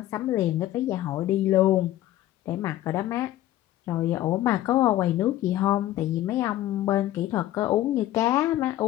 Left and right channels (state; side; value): quieter; right; 14.2 dB